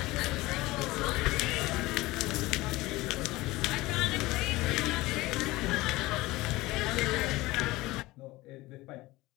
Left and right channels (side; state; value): right; quieter; 19.8 dB